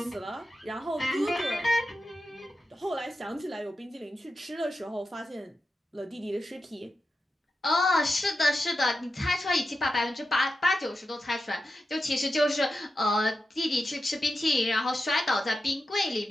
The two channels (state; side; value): normal; both; correlation 0.90